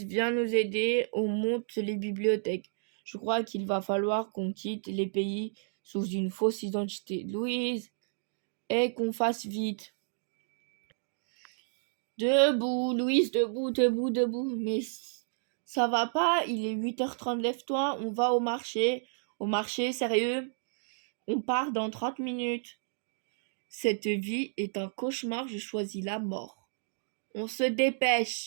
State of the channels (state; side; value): silent; left; digital silence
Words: viens nous aider. On monte les bibliothèques. Je crois qu'il va falloir qu'on quitte les pays sous une fausse identité. Louise, et qu'on fasse vite. Debout, Louise, debout, debout, debout. Mais ça va pas, il est 8h30, lève-toi, on va au marché. Au marché, sérieux? On part dans 30 minutes. Cette vie est un cauchemar, je choisis la mort. On se